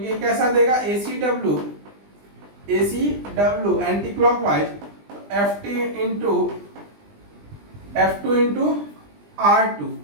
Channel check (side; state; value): left; late; 20 ms